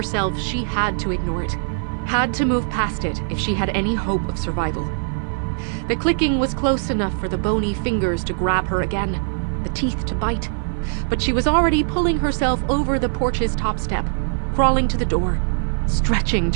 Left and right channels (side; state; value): left; silent; 56 dB below the other